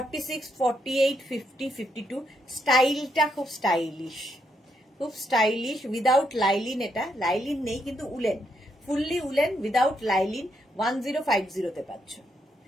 48 50 52। স্টাইলটা খুব স্টাইলিশ, খুব স্টাইলিশ। উইদাউট লাইলিন, এটা লাইলিন নেই কিন্তু woollen, fully woollen without lining 1050 পাচ্ছ।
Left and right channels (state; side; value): normal; both; correlation 0.78